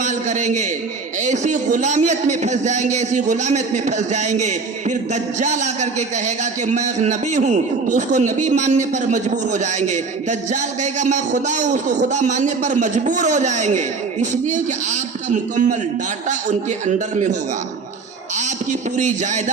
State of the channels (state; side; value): quieter; left; 4.5 dB